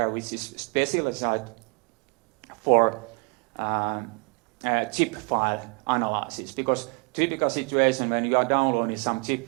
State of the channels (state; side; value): quieter; left; 36.0 dB